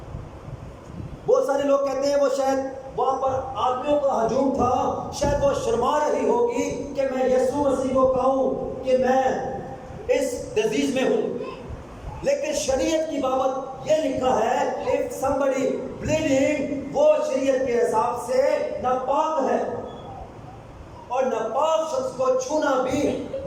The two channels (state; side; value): identical; both; correlation 1.00